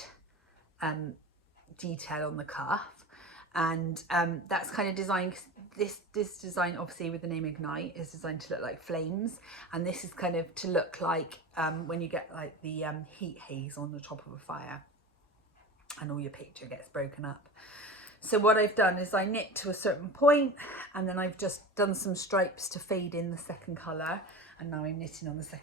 detail on the cuff, and that's kind of designed, this design obviously with the name Ignite is designed to look like flames, and this is kind of to look like when you get like the heat haze on the top of a fire. and all your picture gets broken up. So what I've done is I knit to a certain point, and then I've just done some stripes to fade in the second colour, and now I'm knitting on the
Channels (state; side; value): normal; both; correlation 0.30